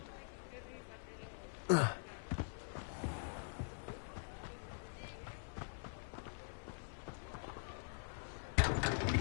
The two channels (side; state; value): right; silent; digital silence